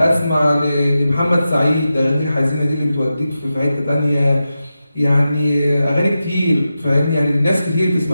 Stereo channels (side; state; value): both; inverted; correlation -0.91